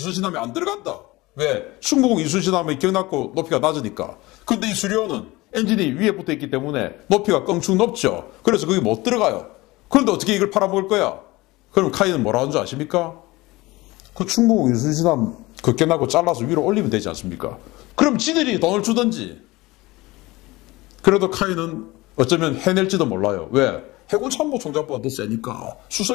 안 들어간다. 왜? 충무공 이순신함이 기억났고 높이가 낮으니까. 근데 이 수리호는 엔진이 위에 붙어 있기 때문에 높이가 껑충 높죠. 그래서 거기 못 들어가요. 그런데 어떻게 이걸 팔아먹을 거야? 그럼 카이는 뭐라 하는 줄 아십니까? 그 충무공 이순신함 그 깨나고 잘라서 위로 올리면 되지 않습니까? 그럼 지들이 돈을 주든지. 그래도 카이는 어쩌면 해낼지도 몰라요. 왜? 해군참모총장보다 더 세니까.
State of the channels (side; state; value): right; quieter; 20.8 dB